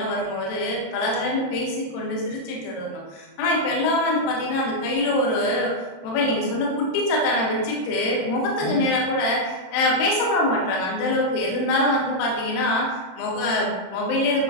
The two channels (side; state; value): right; late; 26 ms